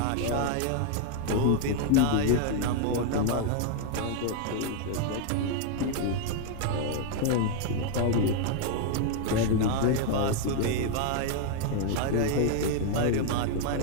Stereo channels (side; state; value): both; different; correlation 0.00